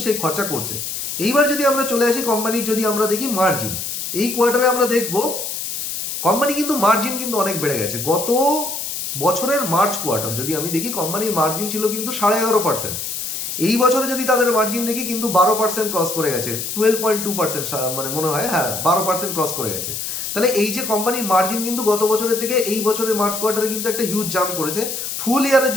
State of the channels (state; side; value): noise; left; hiss, 5 dB below the sound